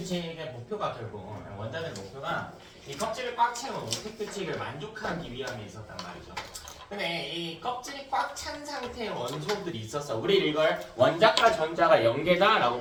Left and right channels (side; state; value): both; identical; correlation 1.00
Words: 목표가 결국 원자들 목표가 이 껍질을 꽉 채운 옥텟 규칙을 만족하기 위함에 있었단 말이죠. 근데 이 껍질이 꽉 찬 상태의 원소들이 있었어. 우리 이걸 원자과 전자가